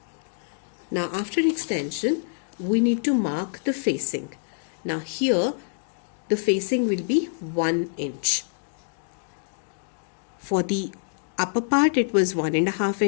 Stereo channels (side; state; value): right; silent; digital silence